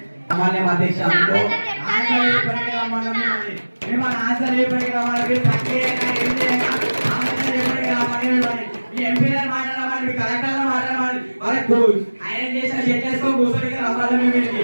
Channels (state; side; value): inverted; both; correlation -1.00